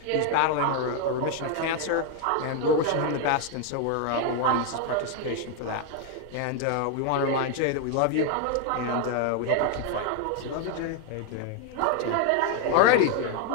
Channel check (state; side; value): different; both; correlation 0.01